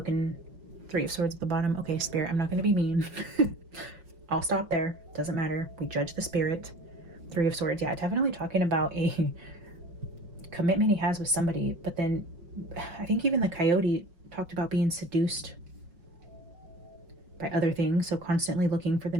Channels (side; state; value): left; late; 5.5 ms